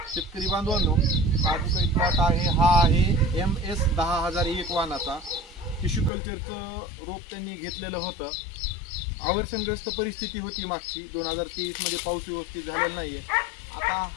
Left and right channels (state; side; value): drops out; right; at 6.1 s